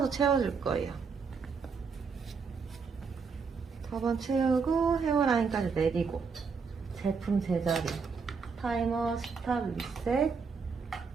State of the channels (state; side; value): quieter; left; 5.4 dB